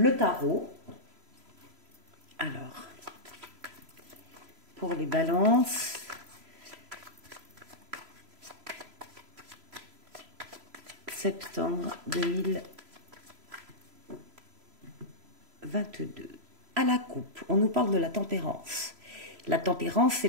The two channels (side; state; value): left; late; 3.0 ms